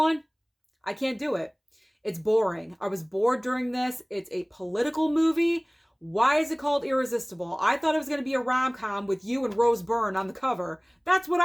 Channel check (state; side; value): identical; both; correlation 1.00